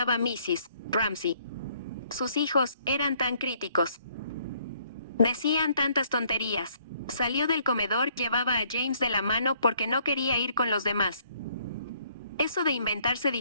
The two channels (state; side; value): inverted; both; correlation -0.65